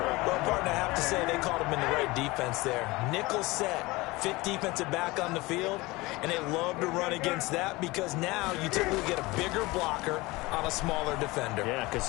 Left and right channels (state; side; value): quieter; right; 21.9 dB